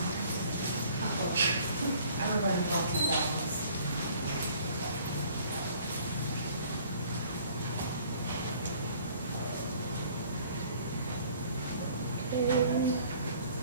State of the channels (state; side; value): inverted; both; correlation -0.55